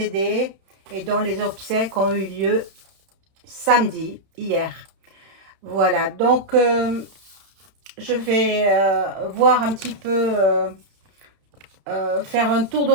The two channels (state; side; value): late; left; 31 ms